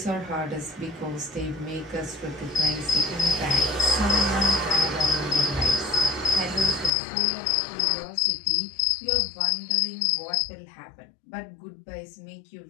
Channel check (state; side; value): drops out; right; at 6.9 s